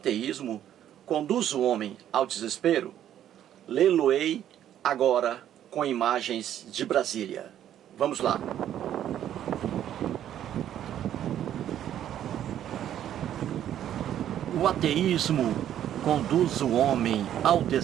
conduz o homem ao desespero?" Lê-lo-ei agora com imagens de Brasília. Vamos lá. O ateísmo conduz o homem ao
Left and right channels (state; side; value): quieter; left; 10.9 dB